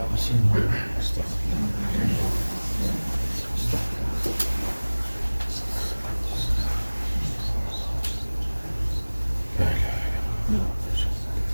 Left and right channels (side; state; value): both; inverted; correlation -1.00